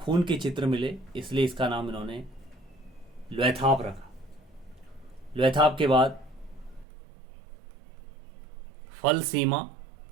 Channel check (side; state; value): left; drops out; at 6.9 s